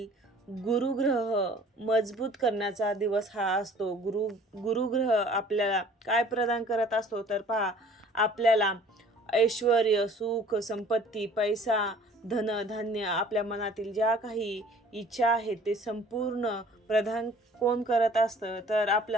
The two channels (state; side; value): normal; both; correlation 0.51